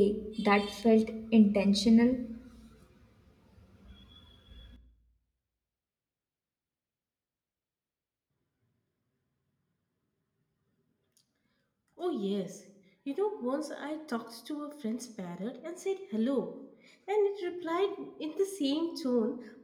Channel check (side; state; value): both; identical; correlation 1.00